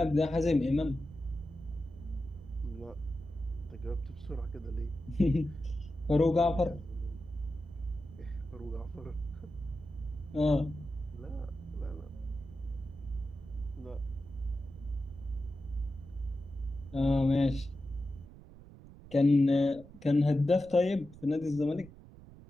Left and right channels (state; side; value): noise; right; rumble, 18 dB below the sound